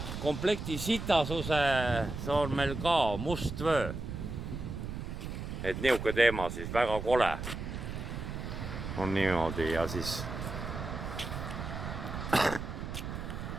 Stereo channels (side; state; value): right; noise; rumble, 6 dB below the sound